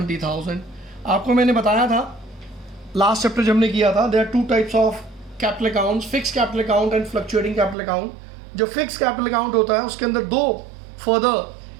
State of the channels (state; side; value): drops out; left; at 7.8 s